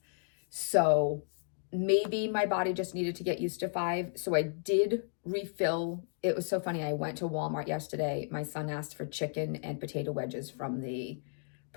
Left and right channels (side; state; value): right; silent; digital silence